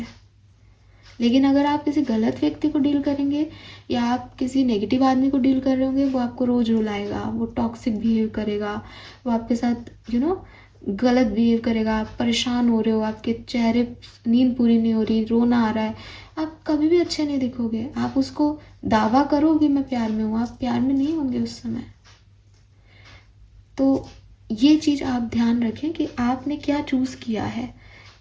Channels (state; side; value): identical; both; correlation 1.00